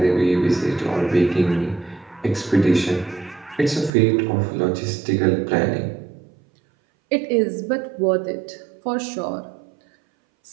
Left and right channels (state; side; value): drops out; left; at 3.9 s